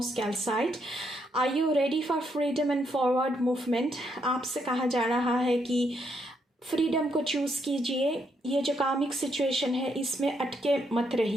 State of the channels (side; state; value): both; normal; correlation 0.76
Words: calcite. Are you ready for freedom and forward movement. आपसे कहा जा रहा है कि फ्रीडम को चूज़ कीजिए। ये जो कामिक सिचुएशन है इसमें अटके मत